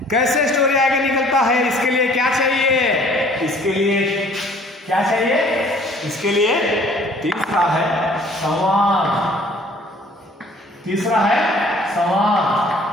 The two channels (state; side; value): normal; both; correlation 0.54